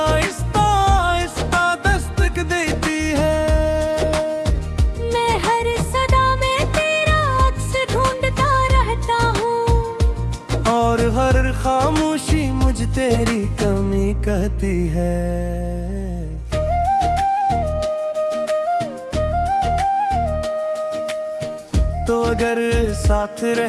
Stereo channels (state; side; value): identical; both; correlation 1.00